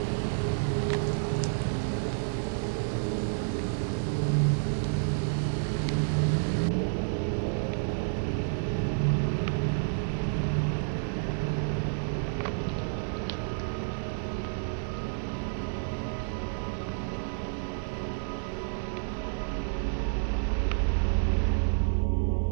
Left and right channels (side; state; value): left; silent; digital silence